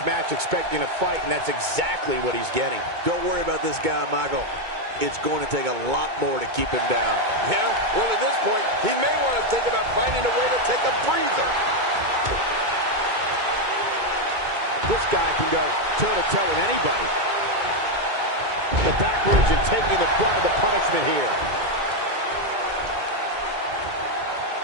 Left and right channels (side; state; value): left; late; 2.2 ms